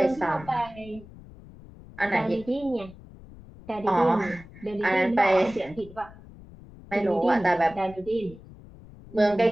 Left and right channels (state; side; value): noise; left; rumble, 19 dB below the sound